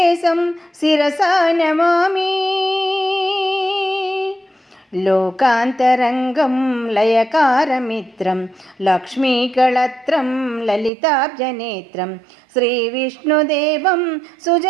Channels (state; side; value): drops out; left; at 10.9 s